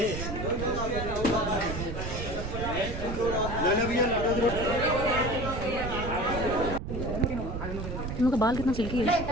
इन लोग का बाल कितना सिल्की है।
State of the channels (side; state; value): right; noise; rumble, 5 dB below the sound